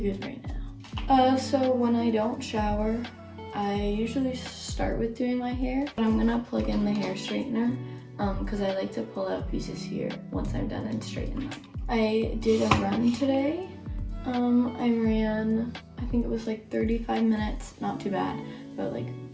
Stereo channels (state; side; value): identical; both; correlation 1.00